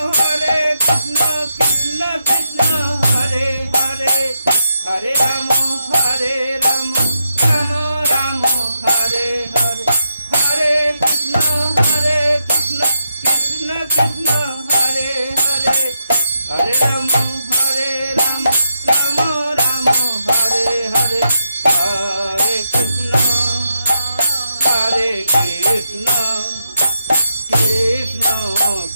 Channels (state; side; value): inverted; both; correlation -0.82